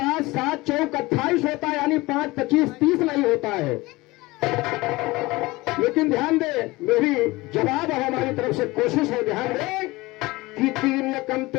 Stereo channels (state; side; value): quieter; right; 21.1 dB